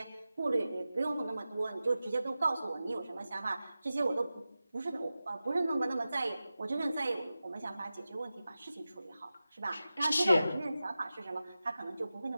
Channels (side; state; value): both; inverted; correlation -0.94